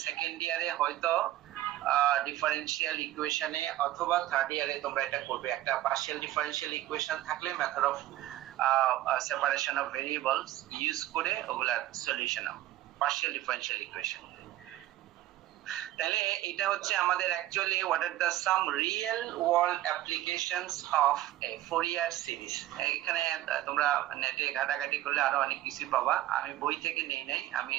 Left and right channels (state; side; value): quieter; left; 14.6 dB